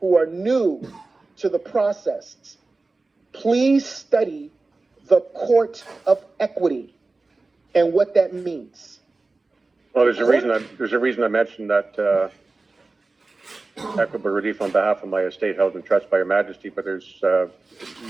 who are new to the process, please study the court of equity and what that means. Well, there's a reason I mentioned that equitable relief on behalf of my estate held in trust by Your Majesty, but there's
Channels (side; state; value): left; quieter; 3.5 dB